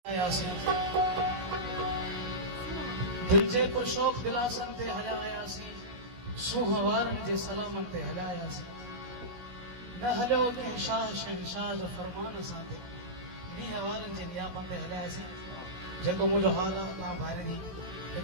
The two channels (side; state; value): left; late; 16 ms